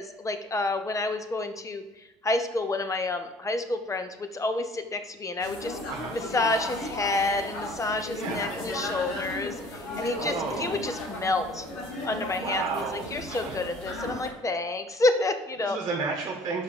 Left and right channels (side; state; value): both; normal; correlation 0.53